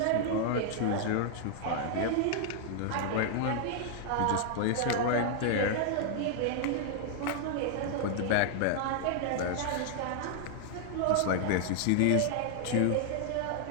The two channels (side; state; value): both; different; correlation 0.00